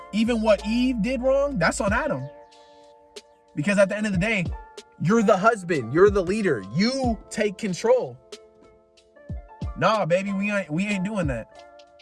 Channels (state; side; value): identical; both; correlation 1.00